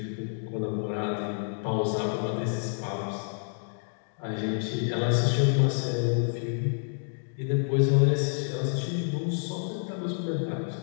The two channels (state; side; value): silent; right; digital silence